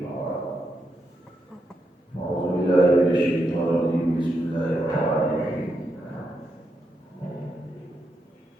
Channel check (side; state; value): both; normal; correlation 0.83